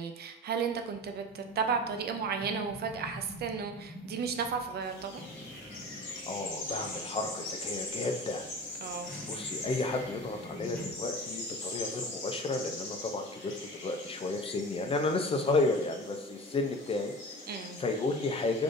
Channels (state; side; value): normal; both; correlation 0.35